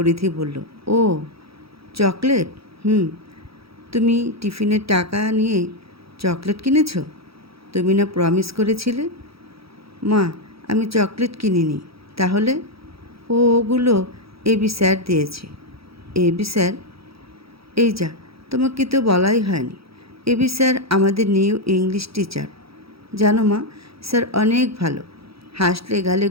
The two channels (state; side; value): late; left; 0.76 ms